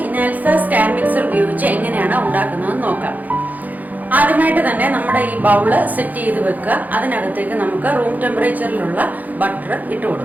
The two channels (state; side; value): late; left; 0.081 ms